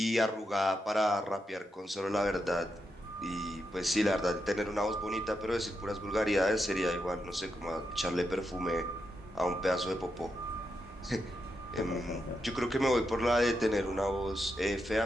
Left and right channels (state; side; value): normal; both; correlation 0.84